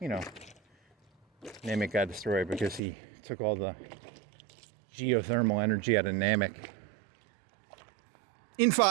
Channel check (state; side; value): drops out; left; at 2.8 s